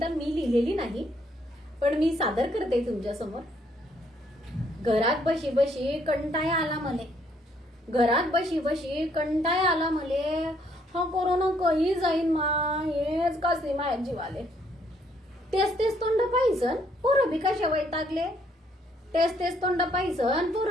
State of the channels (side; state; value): both; normal; correlation 0.68